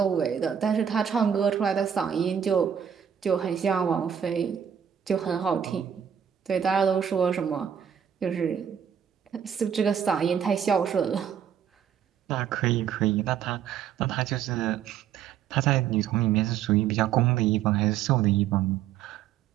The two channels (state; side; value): quieter; left; 8.6 dB